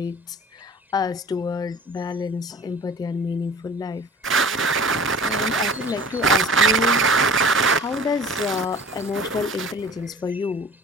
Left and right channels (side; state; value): both; normal; correlation 0.43